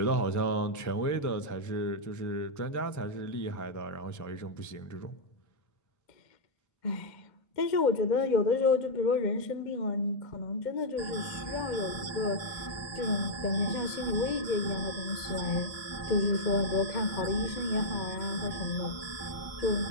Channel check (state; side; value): late; right; 2.1 ms